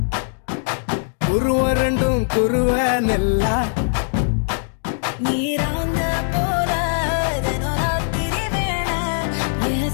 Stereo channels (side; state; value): right; silent; digital silence